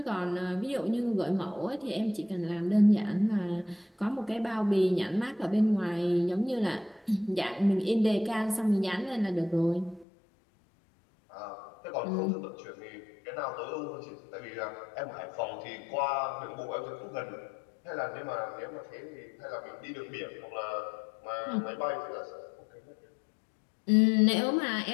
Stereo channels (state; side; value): drops out; right; at 10.1 s